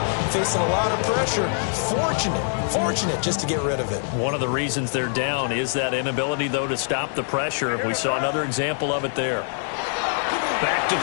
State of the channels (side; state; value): right; silent; digital silence